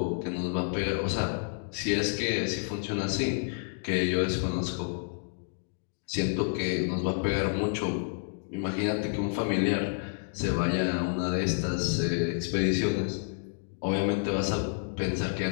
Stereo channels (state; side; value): silent; right; digital silence